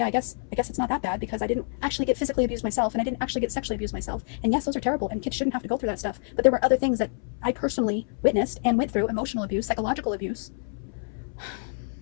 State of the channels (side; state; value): right; silent; 60 dB below the other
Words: I guess it's not that bad, because I didn't actually get physically abused myself, and I didn't actually get sexually abused myself. And yes, those are terrible, and kids shouldn't have to go through that stuff. But there were other things that I personally witnessed and went through: emotional abuse, psychological abuse.